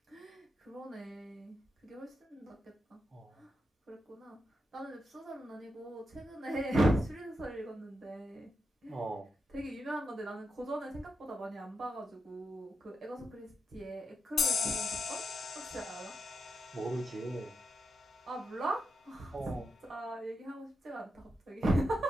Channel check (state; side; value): normal; both; correlation 0.86